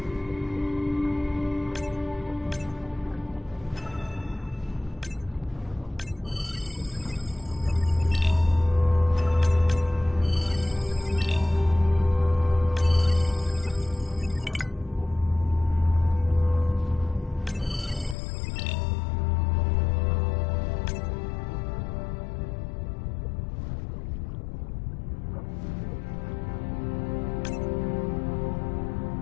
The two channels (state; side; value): drops out; right; at 18.2 s